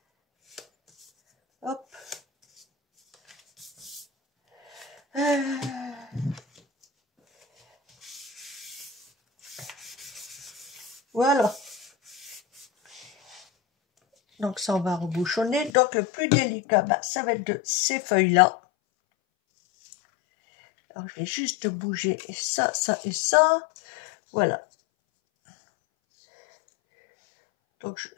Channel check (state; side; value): drops out; right; at 15.7 s